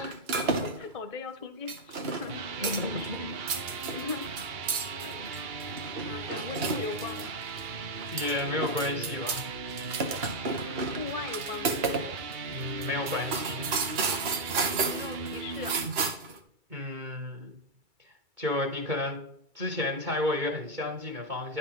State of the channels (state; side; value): late; left; 2.3 ms